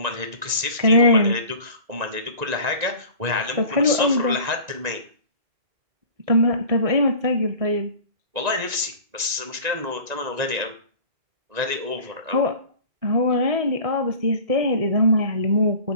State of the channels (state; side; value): late; left; 1.9 ms